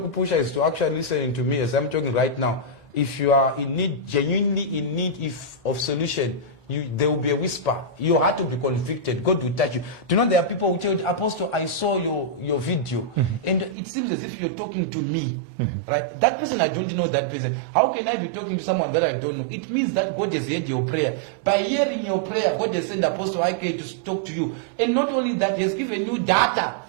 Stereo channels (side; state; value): left; drops out; at 13.8 s